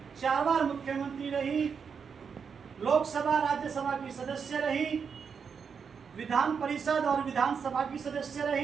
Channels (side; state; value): left; quieter; 6.3 dB